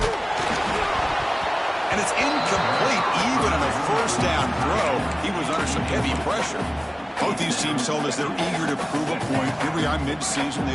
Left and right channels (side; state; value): both; identical; correlation 1.00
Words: And it's incomplete even on a first down throw. He was under some heavy pressure. Both these teams told us they're eager to prove a point. Here we are mid-season. They